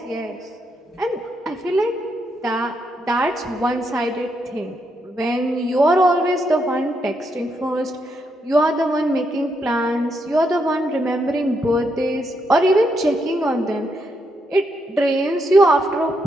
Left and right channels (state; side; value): normal; both; correlation 0.79